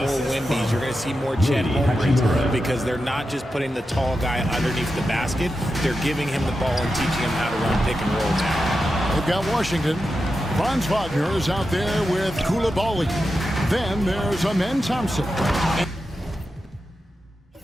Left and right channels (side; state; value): both; normal; correlation 0.90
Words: Wemby's. You're going to see more Chet Holmgrens because they're not just putting the tall guy underneath the basket. They're giving him the ball and teaching him how to run pick and roll now. They've got Washington. Franz Wagner is out there with Koulibaly. Then there's Amen Thompson.